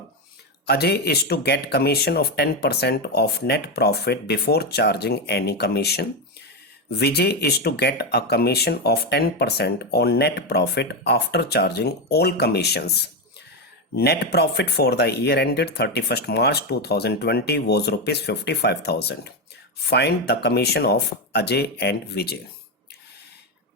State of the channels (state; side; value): normal; both; correlation 0.10